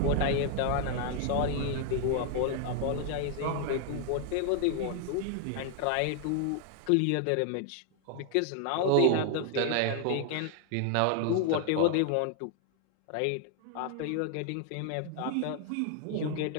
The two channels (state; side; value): different; both; correlation 0.00